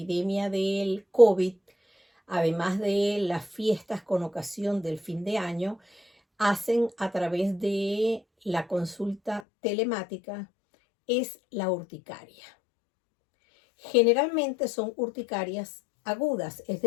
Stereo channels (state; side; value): drops out; right; at 9.4 s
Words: del COVID, además de las fiestas con ocasión del fin de año, hacen a través de la consulta telemática, es la urticaria. Generalmente son urticarias agudas, es